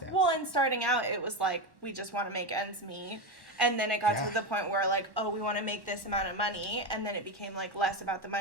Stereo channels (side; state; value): left; late; 1.1 ms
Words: Well, and starting out, it was like, we just want to make ends meet. And then it got to the point where, like, oh, we want to make this amount of money. And then it became, like, less about the